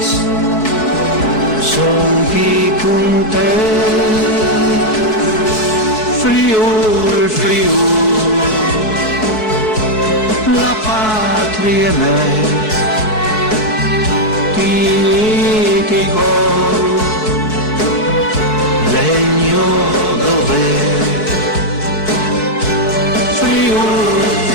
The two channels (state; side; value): late; right; 4.6 ms